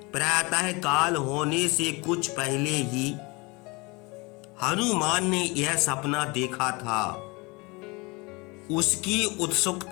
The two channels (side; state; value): right; quieter; 26.3 dB